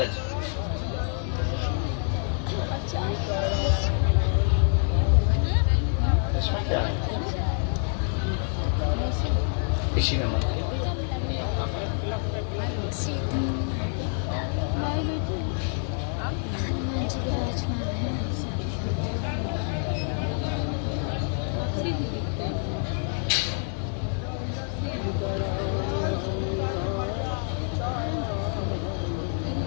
इसमें क्या है? इसी में मत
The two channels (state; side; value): silent; right; 56 dB below the other